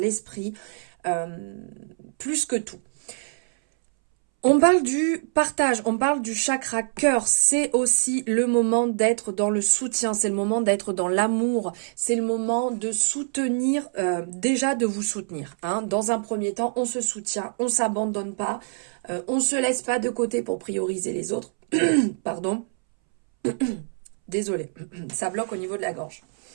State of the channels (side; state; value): left; silent; 62 dB below the other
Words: plus que tout. On parle du partage, on parle du chakra cœur. C'est aussi le moment d'être dans le soutien, c'est le moment d'être dans l'amour, c'est le moment de soutenir, déjà de vous soutenir. Hein. Dans un premier temps, on se soutient, on ne s'abandonne pas. On ne se laisse pas de côté pour prioriser les autres. Pardon. Désolée, ça bloque au niveau de la gorge.